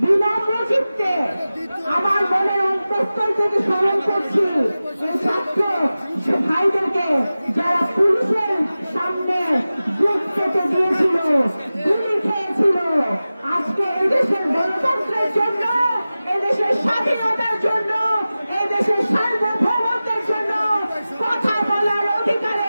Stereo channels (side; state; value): both; inverted; correlation -0.96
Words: বিনম্র চিত্তে আমার মনের অন্তঃস্থল থেকে স্মরণ করছি এই ছাত্র ভাইদেরকে যারা পুলিশের সামনে বুক পেতে দিয়েছিল, গুলি খেয়েছিল। আজকে এদেশের গণতন্ত্রের জন্য, এদেশের স্বাধীনতার জন্য, এদেশের সার্বভৌমত্বের জন্য, কথা বলার